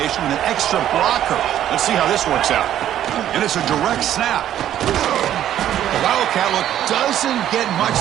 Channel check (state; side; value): quieter; left; 11.4 dB